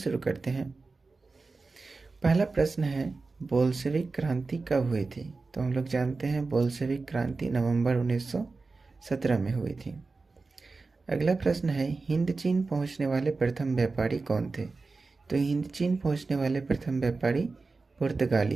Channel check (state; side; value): quieter; left; 3.9 dB